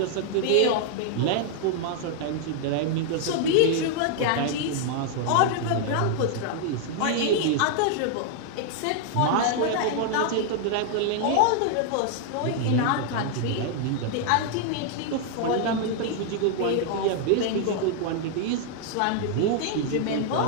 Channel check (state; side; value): different; both; correlation 0.00